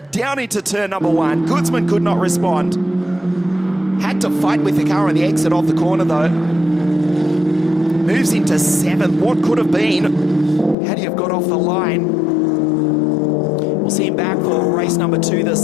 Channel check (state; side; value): drops out; right; at 10.8 s